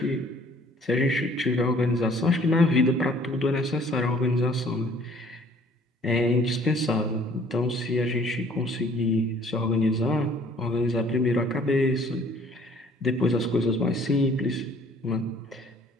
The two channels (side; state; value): both; normal; correlation 0.56